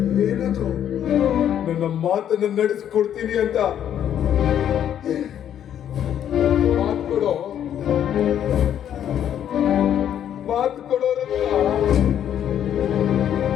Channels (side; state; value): right; quieter; 10.0 dB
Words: ಏನದು? ನನ್ನ ಮಾತನ್ನು ನಡೆಸಿಕೊಡ್ತೀನಿ ಅಂತ ಮಾತು ಕೊಡೋ, ಮಾತು ಕೊಡೋ ರುದ್ರ,